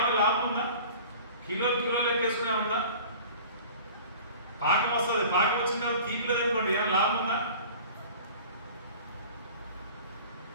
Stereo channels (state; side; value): inverted; both; correlation -0.42